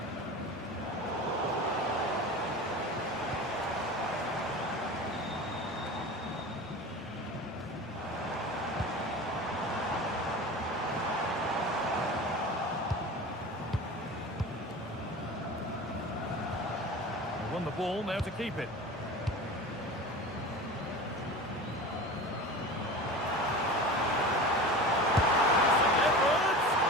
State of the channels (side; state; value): both; normal; correlation 0.33